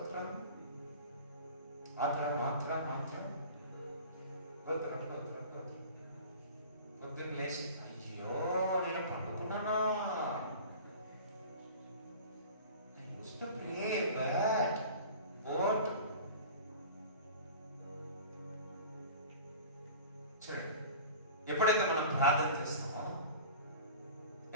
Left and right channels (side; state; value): both; inverted; correlation -0.39